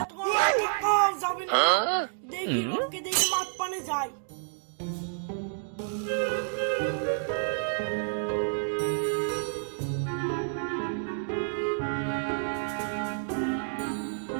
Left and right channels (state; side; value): silent; left; digital silence